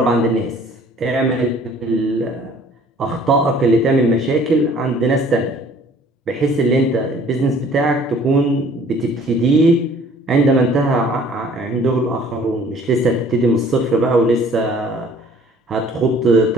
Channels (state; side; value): normal; both; correlation 0.54